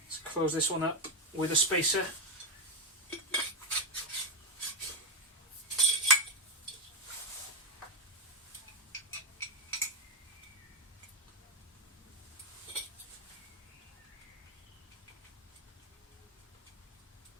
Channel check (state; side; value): normal; both; correlation 0.05